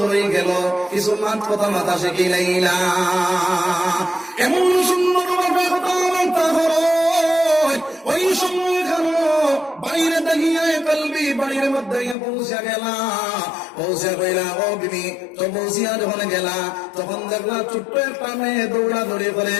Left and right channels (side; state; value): right; drops out; at 12.2 s